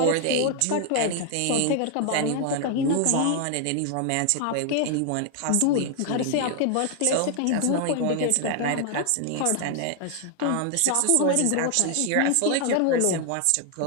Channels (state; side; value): different; both; correlation 0.00